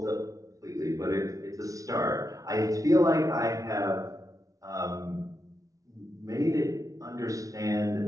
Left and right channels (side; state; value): left; late; 0.17 ms